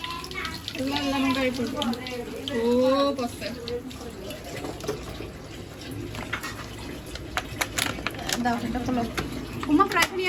গাড়ি পড়বো ও বসতে দাও সেটা খোলো উমা প্রাইভেট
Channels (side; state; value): both; identical; correlation 1.00